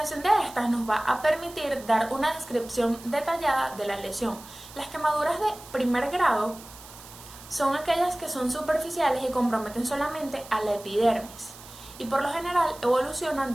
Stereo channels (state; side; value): noise; right; hiss, 18 dB below the sound